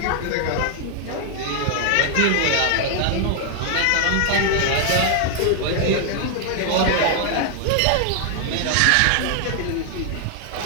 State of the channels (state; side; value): different; both; correlation 0.00